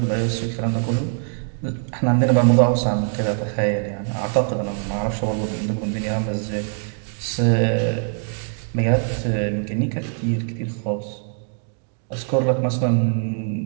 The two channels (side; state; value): left; silent; 59 dB below the other